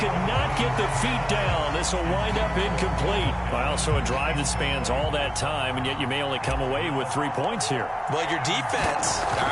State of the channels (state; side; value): identical; both; correlation 1.00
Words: not get the feet down. This will wind up incomplete. Well, so a drive that spans all that time, and yet you may only come away with 3 points here. Well, your defense, all